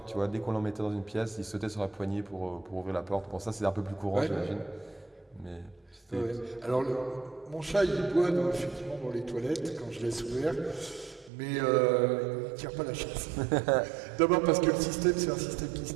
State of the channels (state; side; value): drops out; left; at 11.3 s